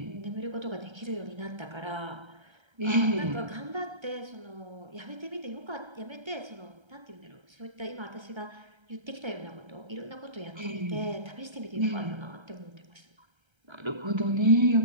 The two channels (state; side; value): late; left; 1.3 ms